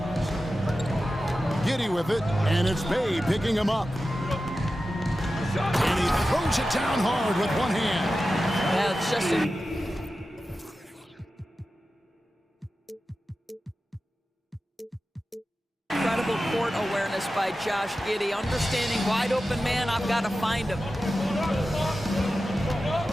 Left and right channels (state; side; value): normal; both; correlation 0.93